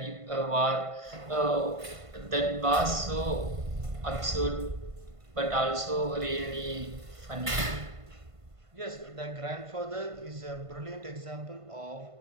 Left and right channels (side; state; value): left; late; 1.5 ms